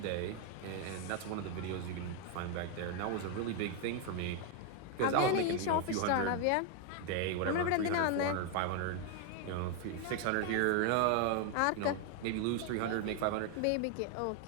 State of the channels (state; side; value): different; both; correlation 0.01